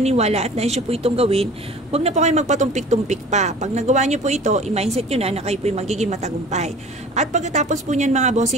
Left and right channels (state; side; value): normal; both; correlation 0.44